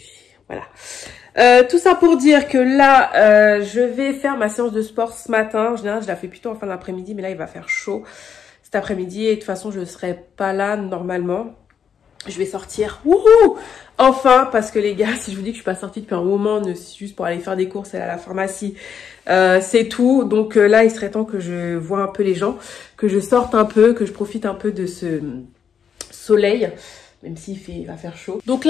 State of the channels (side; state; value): right; quieter; 7.4 dB